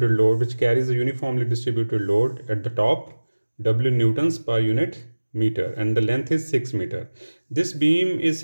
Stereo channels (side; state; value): both; inverted; correlation -1.00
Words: load, which carries a uniformly distributed load at the top, W newtons per unit meter, and the length is 6 meter. This beam is